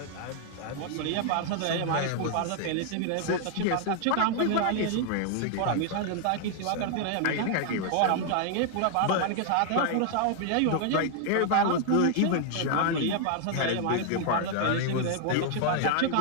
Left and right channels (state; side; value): different; both; correlation 0.00